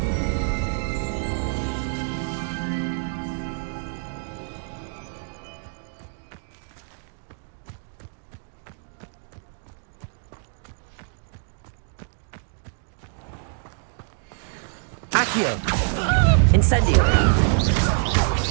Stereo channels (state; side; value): silent; left; 61 dB below the other